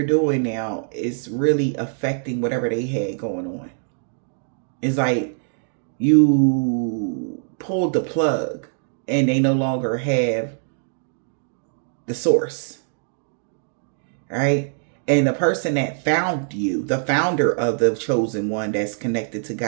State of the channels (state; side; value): silent; left; digital silence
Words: doing now is really affecting whatever they had going on. It's like you pulled the plug and they no longer have the source, right? And the person that found you, the founder of the chosen one that's connected to